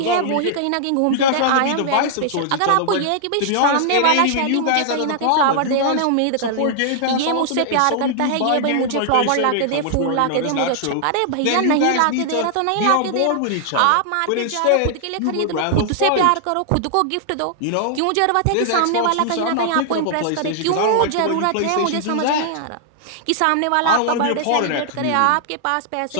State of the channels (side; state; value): both; different; correlation -0.01